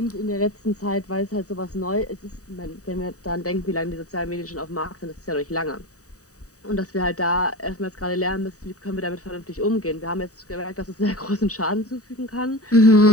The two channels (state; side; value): late; right; 0.66 ms